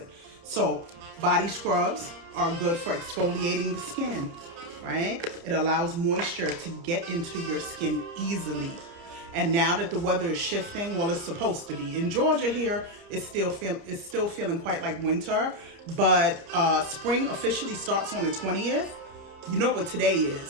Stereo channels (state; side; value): late; left; 30 ms